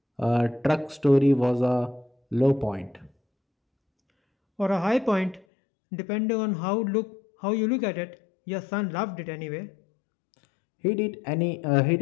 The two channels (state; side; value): drops out; right; at 5.5 s